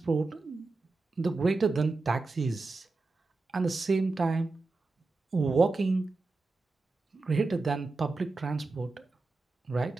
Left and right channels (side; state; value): left; quieter; 3.6 dB